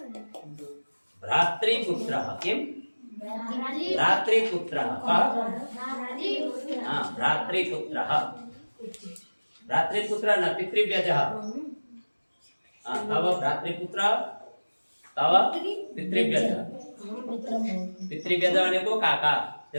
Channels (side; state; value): both; inverted; correlation -1.00